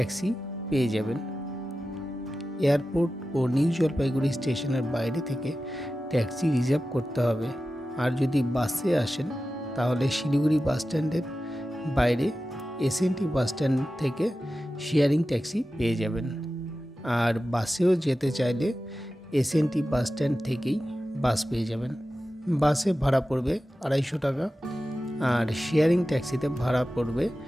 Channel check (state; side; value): normal; both; correlation 0.94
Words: পেয়ে যাবেন। এয়ারপোর্ট ও নিউ জলপাইগুড়ি স্টেশনের বাইরে থেকে ট্যাক্সি রিজার্ভ করতে হবে। আর যদি বাসে আসেন তাহলে শিলিগুড়ি বাস স্ট্যান্ডের বাইরে এসএনটি বাস স্ট্যান্ড থেকে শেয়ারিং ট্যাক্সি পেয়ে যাবেন। আর বাসেও যেতে চাইলে এসএনটি বাস স্ট্যান্ড থেকেই বাস পেয়ে যাবেন। বাসে ভাড়া পড়বে 250 টাকা, আর শেয়ারিং ট্যাক্সিতে ভাড়া পড়বে